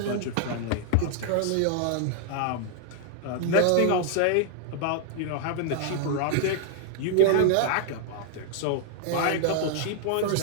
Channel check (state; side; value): different; both; correlation -0.01